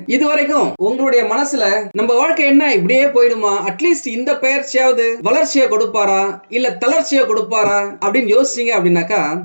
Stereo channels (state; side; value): inverted; both; correlation -1.00